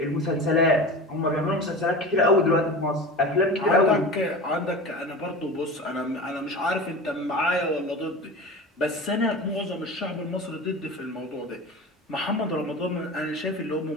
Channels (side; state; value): both; normal; correlation 0.32